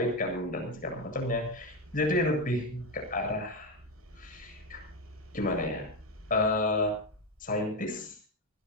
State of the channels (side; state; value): both; normal; correlation 0.11